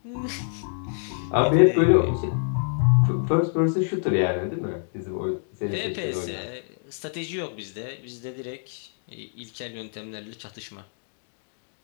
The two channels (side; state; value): right; silent; digital silence